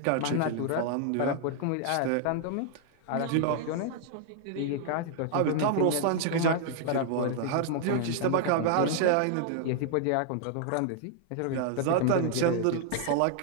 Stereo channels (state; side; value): different; both; correlation 0.00